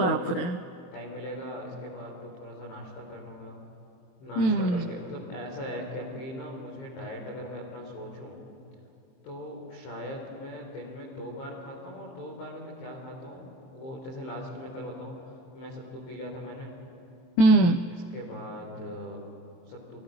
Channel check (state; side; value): late; right; 23 ms